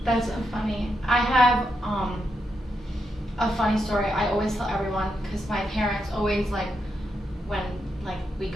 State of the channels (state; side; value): normal; both; correlation 0.83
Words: That's so funny. I have a funny story I always tell everyone, because my parents always when we